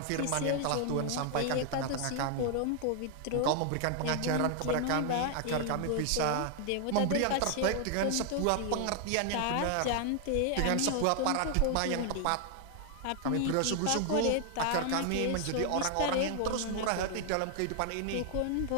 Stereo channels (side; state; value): both; different; correlation 0.00